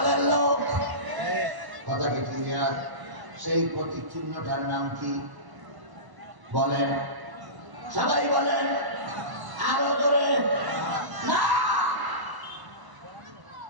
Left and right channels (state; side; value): late; left; 1.0 ms